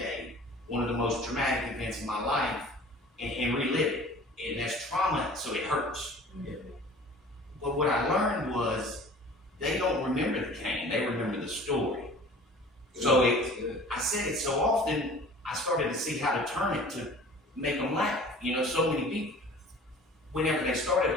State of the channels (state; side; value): normal; both; correlation 0.45